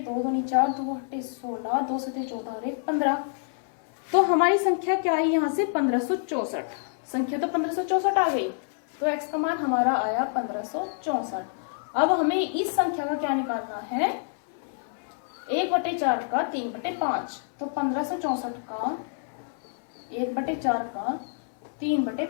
दूनी 4, 2 अट्ठे 16, 2 से 14 और 1 15। तो हमारी संख्या क्या आई यहाँ से 1564। संख्या तो 1564 आ गई। तो x का मान हमारा आया 1564। अब हमें इस संख्या का क्या निकालना है, 1/4 का 3/5। तो 1564 का 1/4 का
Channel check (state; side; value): silent; right; 60 dB below the other